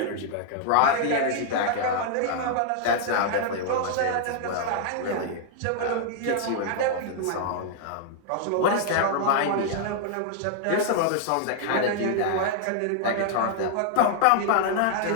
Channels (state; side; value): different; both; correlation -0.01